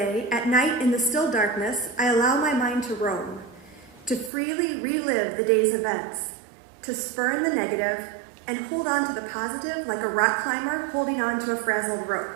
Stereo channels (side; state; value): left; drops out; at 4.3 s